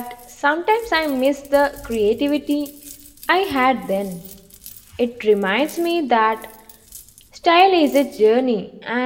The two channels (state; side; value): identical; both; correlation 1.00